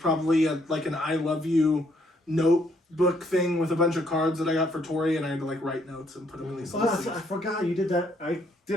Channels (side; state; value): both; normal; correlation 0.69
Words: like an I love you notebook thing with a bunch of cards that I got for Tori, and I had to like write notes and put them in these little I things. forgot you did that. I did